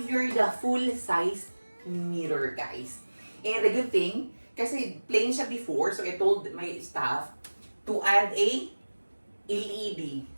here the full-size mirror, guys. And the good thing, kasi plain siya before, so I told my staff to add a LED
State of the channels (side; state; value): both; inverted; correlation -1.00